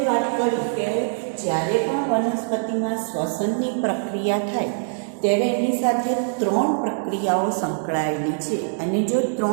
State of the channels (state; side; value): silent; left; 63 dB below the other